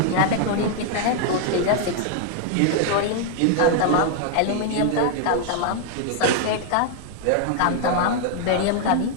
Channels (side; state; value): both; different; correlation 0.00